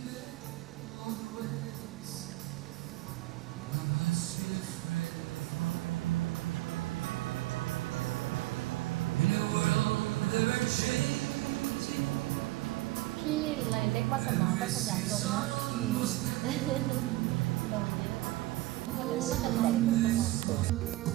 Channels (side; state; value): left; quieter; 18.4 dB